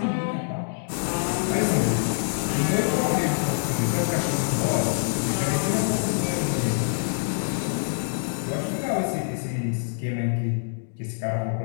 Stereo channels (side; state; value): right; silent; digital silence